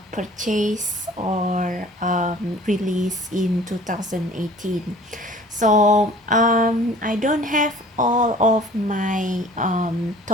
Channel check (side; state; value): both; normal; correlation 0.48